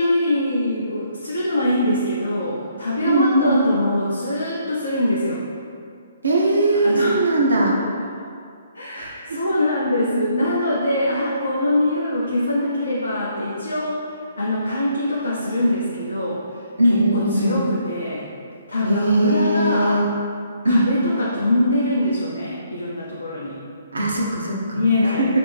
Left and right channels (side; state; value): both; inverted; correlation -0.70